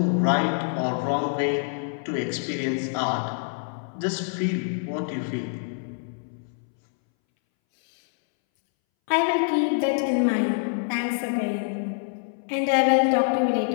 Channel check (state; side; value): silent; right; 61 dB below the other